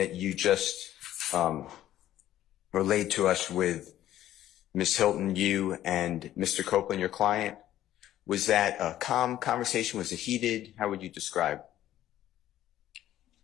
you just relayed to us with Ms. Hilton, you and Mr. Copeland, your client, was that a calm conversation? Was it heated? How would you describe?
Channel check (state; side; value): quieter; right; 13.0 dB